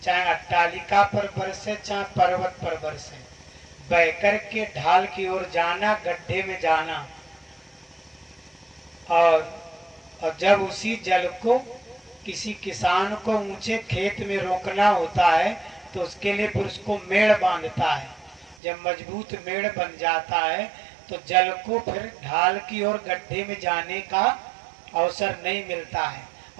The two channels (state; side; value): drops out; left; at 18.6 s